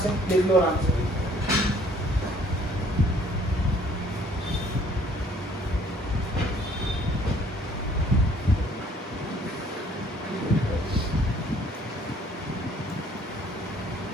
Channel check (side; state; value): both; normal; correlation 0.59